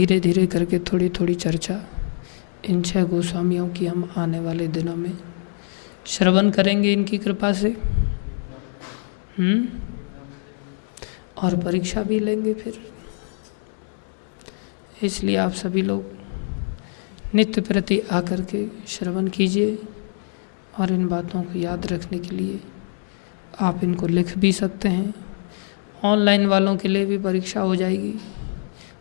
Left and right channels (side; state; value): right; silent; digital silence